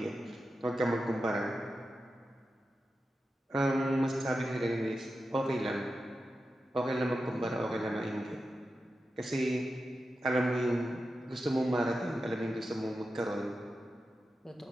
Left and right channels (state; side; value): normal; both; correlation 0.91